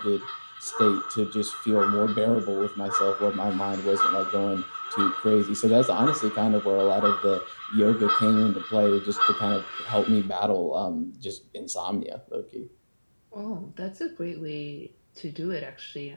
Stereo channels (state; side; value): inverted; both; correlation -1.00